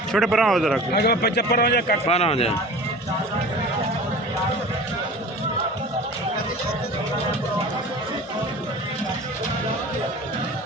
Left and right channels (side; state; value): both; normal; correlation 0.38